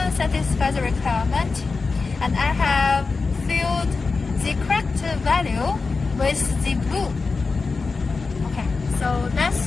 satisfies the requirement, and I have filled the correct value with the blue. Okay, so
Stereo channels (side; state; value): right; quieter; 4.3 dB